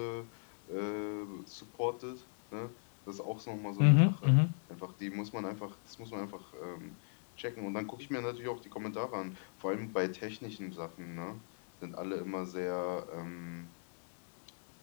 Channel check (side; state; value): right; silent; digital silence